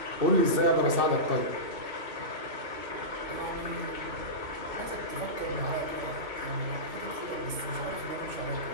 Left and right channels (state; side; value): late; left; 2.6 ms